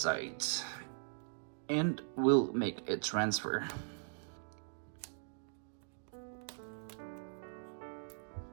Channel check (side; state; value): left; silent; digital silence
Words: and we'll make a transfer.